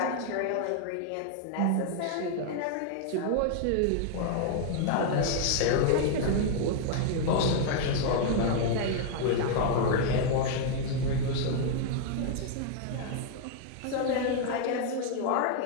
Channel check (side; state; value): both; different; correlation 0.00